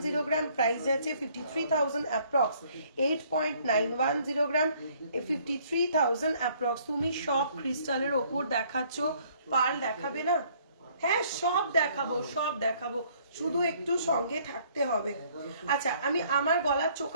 গ্রাম, প্রাইস যাচ্ছে 53,000 অ্যাপ্রক্স, 8.910 গ্রাম, 53,000 অ্যাপ্রক্স। তুমি সব ক্রিস্টালের ওপর দেখাচ্ছ, পার্ল দেখাবে না? হ্যাঁ সব দেখাবো, সব দেখাবো, শুধু একটু সঙ্গে থাকতে হবে। আচ্ছা আমি আমার গলার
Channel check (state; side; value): inverted; both; correlation -0.61